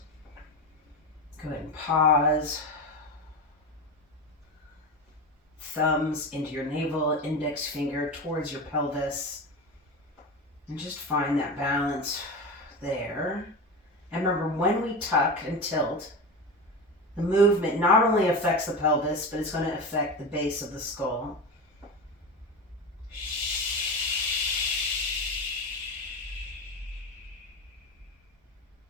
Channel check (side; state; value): both; normal; correlation 0.23